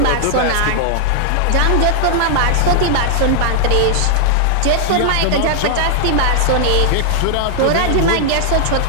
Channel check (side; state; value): both; different; correlation -0.01